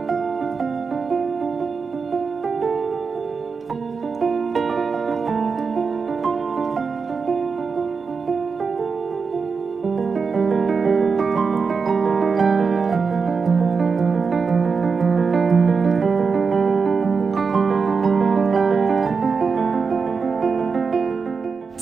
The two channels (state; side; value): quieter; left; 5.1 dB